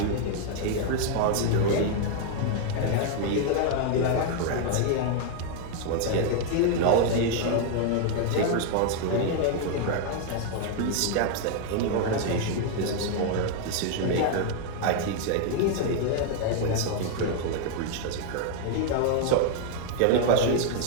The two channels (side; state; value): both; different; correlation 0.00